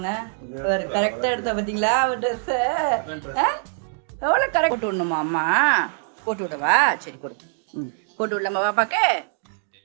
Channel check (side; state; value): left; silent; digital silence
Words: ஒரு கரெக்டா எடுத்தா பாத்தீங்களா அவ ட்ரெஸ்? எவ்வளோ கரெக்ட் போட்டு விடணுமா அம்மா? போட்டு விடவா? சரி போடு. போட்டு விடலாமா பாப்பாக்கு?